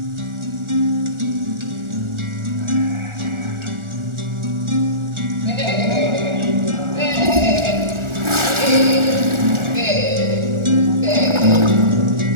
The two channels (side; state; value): left; late; 1.4 ms